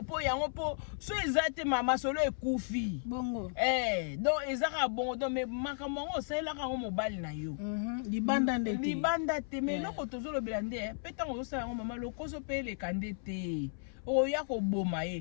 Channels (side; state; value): right; silent; 55 dB below the other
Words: peut so ezate mama solo ekufi. Bongo. Donc ezaka bongo donc mais makamongo ça la ka mobile na yo. Libanda ndete. Libanda te mais loko tozolo belande petango zo sala mama lokoso pe le kandete. Oya ko boma ye.